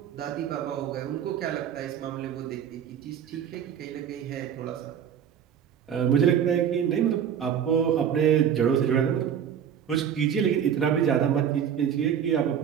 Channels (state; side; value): quieter; left; 8.8 dB